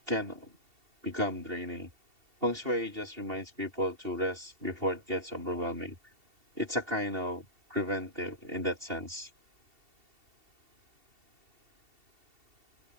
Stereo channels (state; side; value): late; left; 2.7 ms